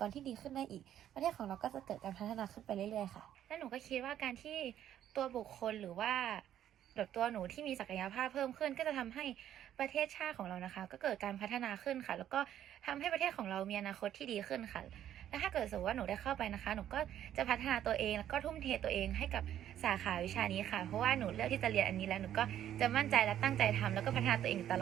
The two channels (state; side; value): quieter; left; 11.0 dB